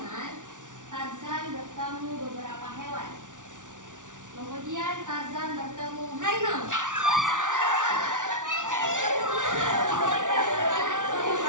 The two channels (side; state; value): left; late; 0.87 ms